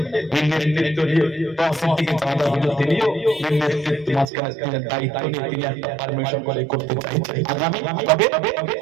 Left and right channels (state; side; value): drops out; left; at 4.2 s